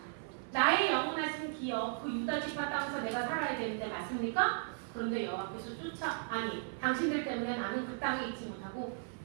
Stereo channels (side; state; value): left; silent; 54 dB below the other